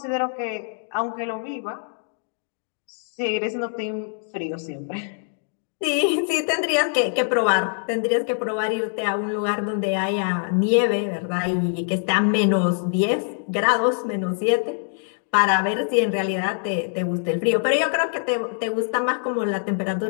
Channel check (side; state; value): right; silent; digital silence